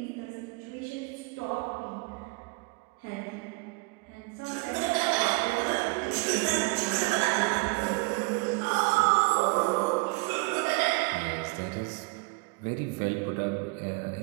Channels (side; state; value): left; quieter; 28.1 dB